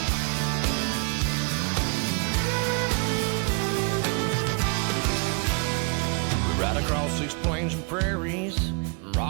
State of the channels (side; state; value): left; quieter; 35.3 dB